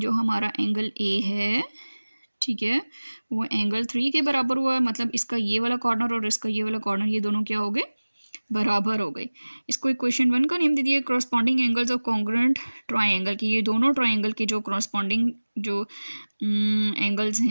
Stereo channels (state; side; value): inverted; both; correlation -1.00